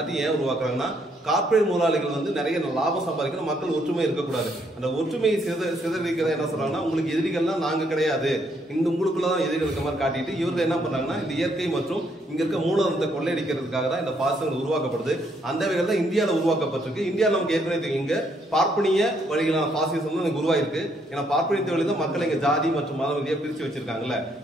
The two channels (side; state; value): both; normal; correlation 0.71